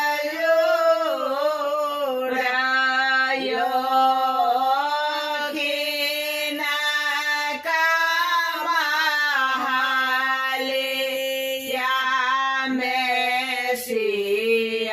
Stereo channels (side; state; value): both; identical; correlation 1.00